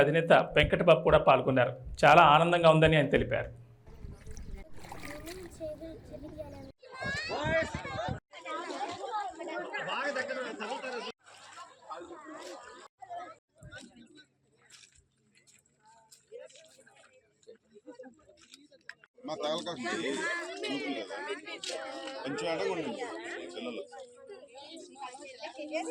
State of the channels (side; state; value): both; identical; correlation 1.00